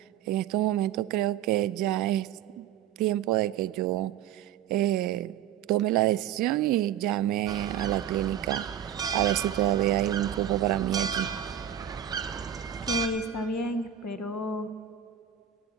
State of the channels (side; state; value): left; quieter; 10.0 dB